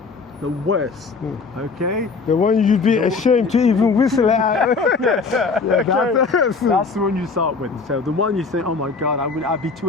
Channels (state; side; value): quieter; right; 4.5 dB